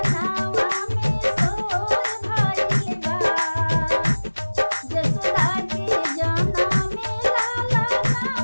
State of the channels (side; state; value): both; inverted; correlation -1.00